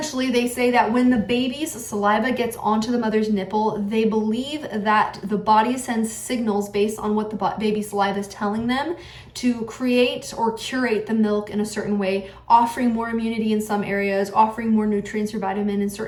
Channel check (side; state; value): both; identical; correlation 1.00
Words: they say that when the baby's saliva gets onto the mother's nipple, they believe that the body sends signals based on what the baby's saliva is telling them to create or curate the milk in a certain way, offering more immunity in some areas, offering more nutrients or vitamin in